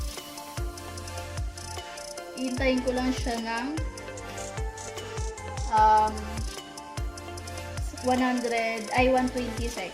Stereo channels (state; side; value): identical; both; correlation 1.00